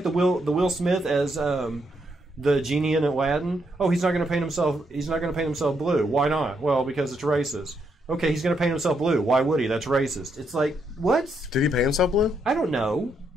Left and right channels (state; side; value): normal; both; correlation 0.77